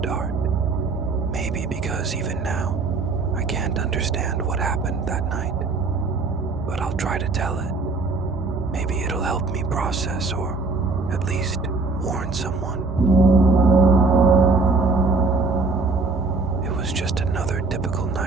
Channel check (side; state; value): left; quieter; 3.8 dB